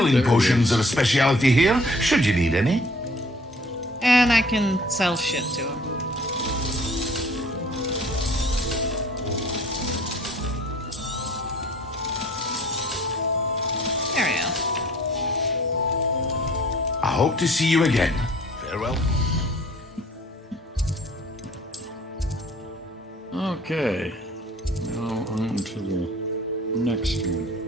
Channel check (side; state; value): both; normal; correlation 0.53